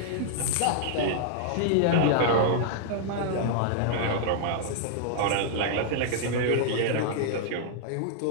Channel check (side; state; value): both; different; correlation -0.01